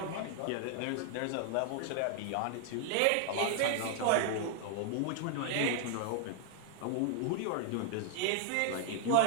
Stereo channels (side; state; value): both; different; correlation 0.00